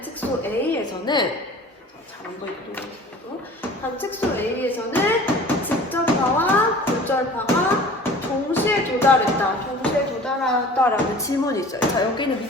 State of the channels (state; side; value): normal; both; correlation 0.44